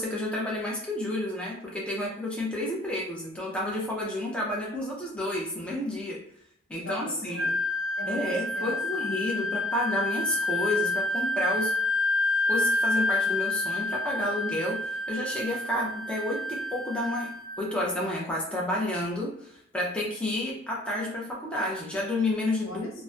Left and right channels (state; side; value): normal; both; correlation 0.59